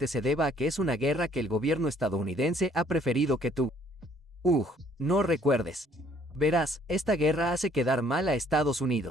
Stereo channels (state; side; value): normal; both; correlation 0.62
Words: se deba a que es una guerra que el gobierno estadounidense ha preferido que tú no recuerdes. Verás, esta guerra hace quedar mal a Estados